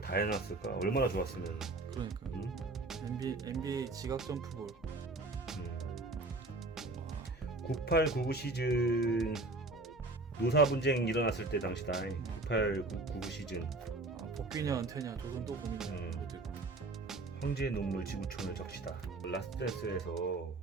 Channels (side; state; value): left; quieter; 3.0 dB